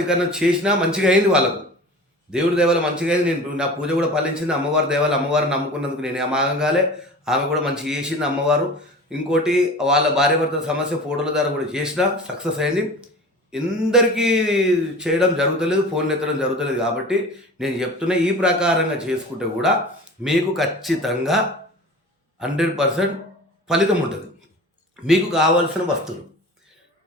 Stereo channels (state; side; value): normal; both; correlation 0.38